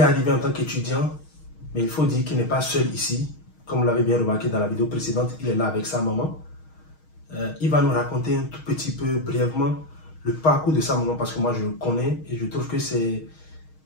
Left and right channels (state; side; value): late; right; 6.4 ms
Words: en tant qu'étudiant, mais il faut dire qu'il n'est pas seul ici. Comme vous l'avez bien remarqué dans la vidéo précédente, il est là avec sa maman. Il va nous raconter un tout petit peu brièvement le parcours de sa maman parce que moi je le connais et je trouve que c'est